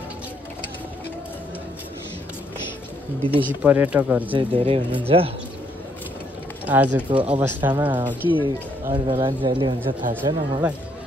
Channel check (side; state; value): both; normal; correlation 0.71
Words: विदेशी पर्यटकहरू चाहिँ धेरै हुनुहुन्छ आजको अवस्थामा कि अरू बेला जहिले हुन्छ थाहा छैन मलाई।